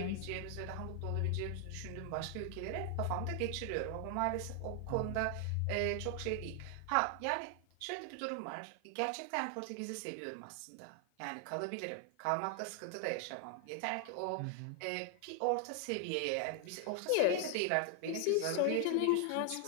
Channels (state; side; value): different; both; correlation 0.00